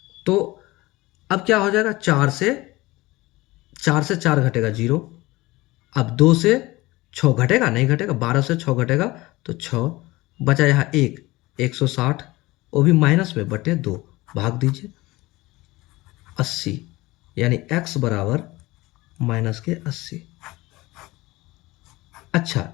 तो अब क्या हो जाएगा, 4 से 4 घटेगा 0, अब 2 से 6 घटेगा, नहीं घटेगा, 12 से 6 घटेगा तो 6 बचा, यहाँ 160, वो भी माइनस में बटे 2, भाग दीजिए 80, यानी x बराबर माइनस के 80। अच्छा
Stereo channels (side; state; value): right; quieter; 20.2 dB